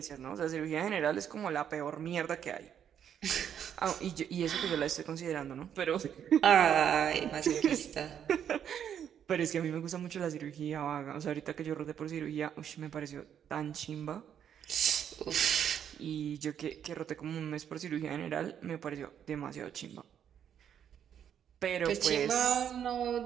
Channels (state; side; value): quieter; left; 9.0 dB